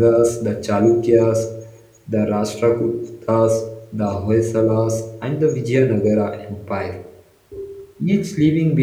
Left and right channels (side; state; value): both; identical; correlation 1.00